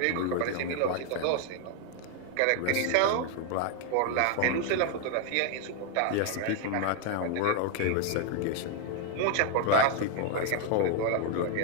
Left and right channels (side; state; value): both; different; correlation 0.00